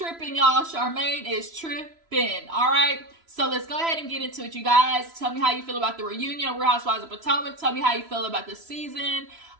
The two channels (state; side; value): late; left; 3.0 ms